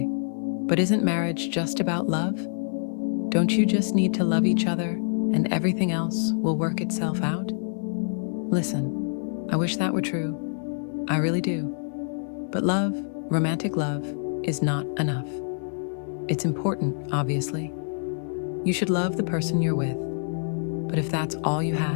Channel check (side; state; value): right; silent; digital silence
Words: but isn't marriage just about love? Don't you just need to love each other and everything else will work itself out? Listen, I wish that were true. I really do. But love, romantic love, is not enough. It's important, obviously. You should love the person you're with. But if that's all you